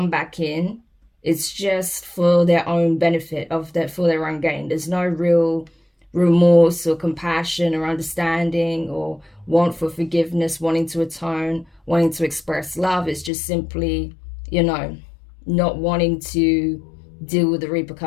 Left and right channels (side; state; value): right; drops out; at 13.3 s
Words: back in, it's just for their own benefit, for their own gain. There's no real remorse or compassion or understanding or want for forgiveness, wanting to atone, wanting to express love. It's just simply, you know, not wanting to deal with the